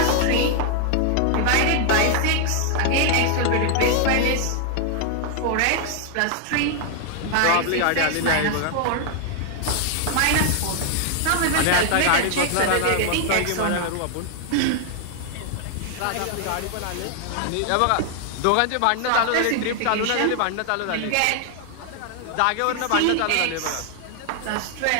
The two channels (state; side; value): different; both; correlation 0.00